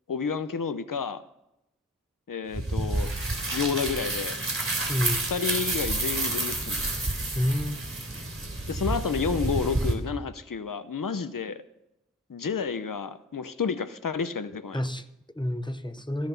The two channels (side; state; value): both; normal; correlation 0.35